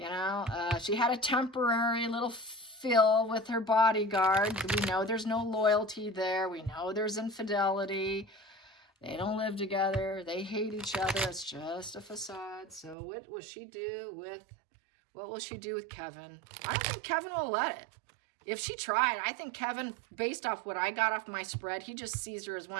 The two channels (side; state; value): left; drops out; at 13.0 s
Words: know, she had a temporary little fill with her bodyguard. We know there's no loyalty there. We know there's infidelity. They don't live together. They hate each other. It's just a facade. So what will she do with Kevin? I don't think Kevin will let it. If she tried, I think Kevin, based off what I got off my spread, he just sees her as